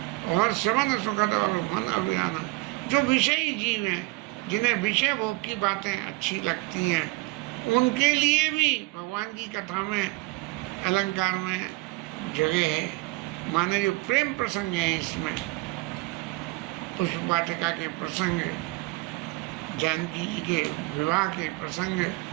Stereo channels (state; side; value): quieter; left; 22.6 dB